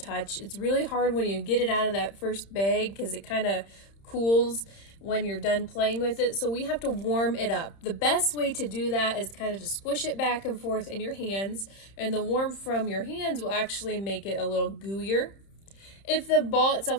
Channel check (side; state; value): right; late; 31 ms